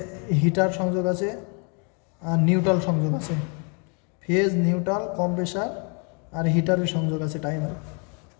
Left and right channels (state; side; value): quieter; right; 37.1 dB